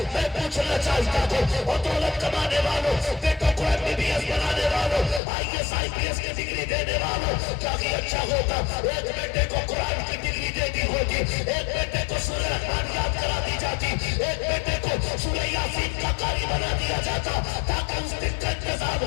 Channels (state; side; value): drops out; right; at 5.2 s